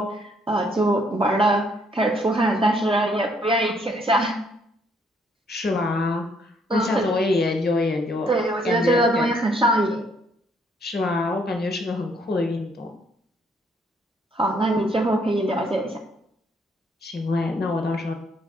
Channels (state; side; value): normal; both; correlation 0.68